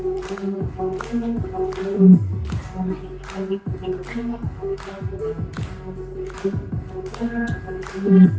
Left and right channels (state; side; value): identical; both; correlation 1.00